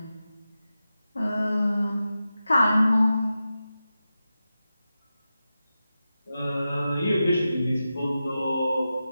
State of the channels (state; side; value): inverted; both; correlation -0.92